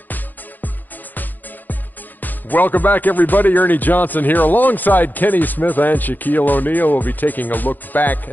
Welcome back, everybody. Ernie Johnson here alongside Kenny Smith and Shaquille O'Neal. We'll be taking a look back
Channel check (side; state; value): right; late; 0.086 ms